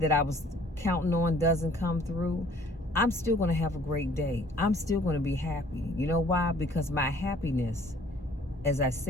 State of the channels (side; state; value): both; normal; correlation 0.56